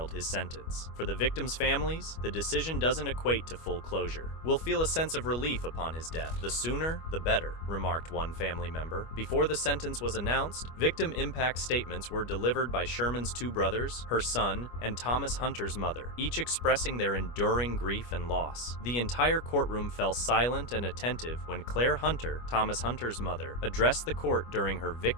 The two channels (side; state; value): right; late; 25 ms